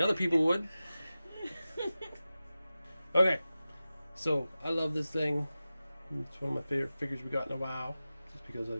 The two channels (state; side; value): inverted; both; correlation -0.95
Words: people would. Okay, so I love this thing. It's one of my favorite figures we got in a while, just because I